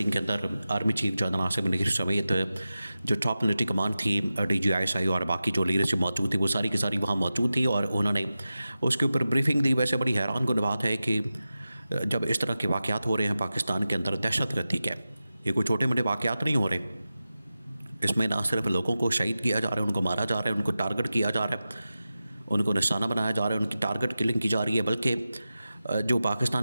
کے اندر army chief general Asif Munir سمیت جو ٹاپ ملٹری کمانڈ تھی، D G I S I اور باقی جو لیڈرشپ موجود تھی، وہ ساری کی ساری وہاں موجود تھی اور انہوں نے اس کے اوپر بریفنگ دی۔ ویسے بڑی حیران کن بات ہے کہ جب اس طرح کے واقعات ہو رہے ہیں پاکستان کے اندر، دہشت گردی کے یہ کوئی چھوٹے موٹے واقعات نہیں ہو رہے، اس میں نہ صرف لوگوں کو شہید کیا جا رہا ہے، ان کو مارا جا رہا ہے، ان کو ٹارگٹ کیا جا رہا ہے، ان کو نشانہ بنایا جا رہا ہے، ان کی ٹارگٹ کلنگ کی جا رہی ہے، بلکہ جو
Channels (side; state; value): both; inverted; correlation -0.94